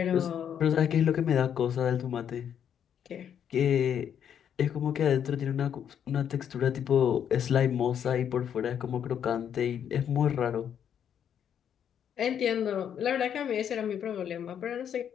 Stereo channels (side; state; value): right; quieter; 8.8 dB